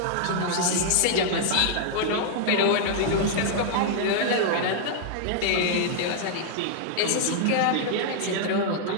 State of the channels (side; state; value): both; different; correlation -0.01